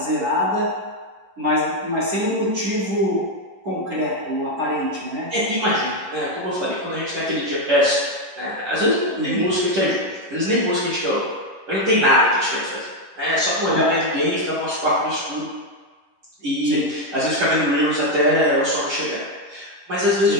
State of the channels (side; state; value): left; late; 11 ms